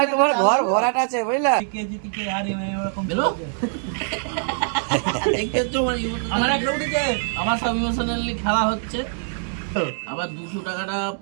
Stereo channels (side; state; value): left; silent; digital silence